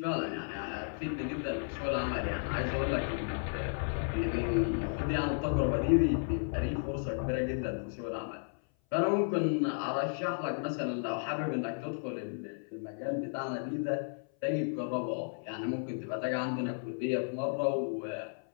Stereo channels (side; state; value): right; silent; 55 dB below the other